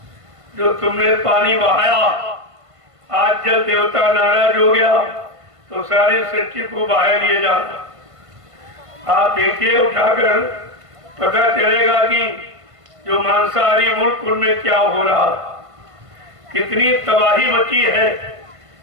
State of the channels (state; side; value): late; left; 1.5 ms